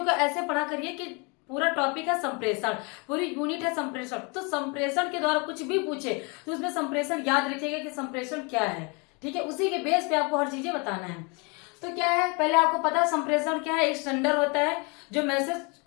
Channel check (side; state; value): right; quieter; 31.3 dB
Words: को ऐसे पढ़ा करिए कि पूरा टॉपिक है संप्रेषण, पूरी यूनिट है संप्रेषण। तो संप्रेषण के द्वारा कुछ भी पूछे तो उसमें संप्रेषण याद रखिएगा कि संप्रेषण क्या है। ठीक है, उसी के बेस पे आपको हर चीजें बताना है। तो क्या है, पहले आपको पता है संप्रेषण क्या है। एक सेंडर होता है जो मैसेज